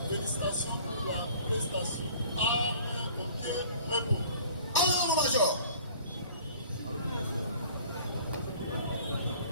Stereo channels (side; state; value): both; inverted; correlation -0.50